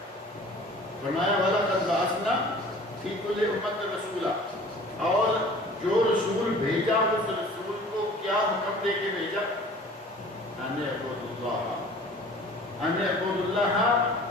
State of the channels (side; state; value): both; normal; correlation 0.46